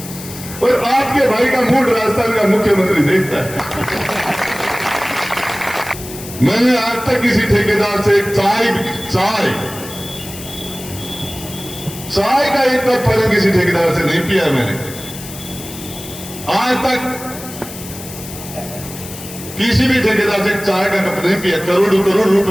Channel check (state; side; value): noise; left; hiss, 13 dB below the sound